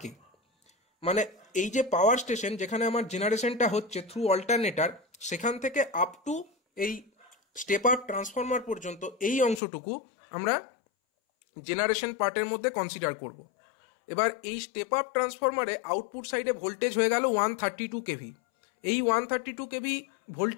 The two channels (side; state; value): right; drops out; at 9.6 s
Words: মানে এই যে পাওয়ার স্টেশন যেখানে আমার জেনারেশনটা হচ্ছে থ্রু অল্টারনেটর, সেখান থেকে আপ টু এই স্টেপ আপ ট্রান্সফরমার পর্যন্ত এই অংশটুকু আমরা জেনারেশন পার্টের মধ্যে কনসিডার করব। এবার এই স্টেপ আপ ট্রান্সফরমারে আউটপুট সাইডে ভোল্টেজ হয়ে গেল 132 কেভি। এই 132 কেভি